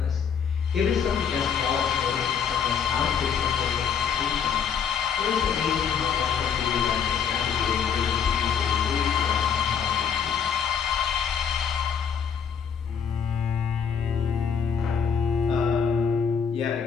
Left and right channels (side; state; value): right; quieter; 7.3 dB